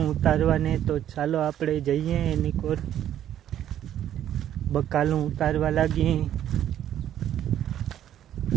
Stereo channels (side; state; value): left; quieter; 11.0 dB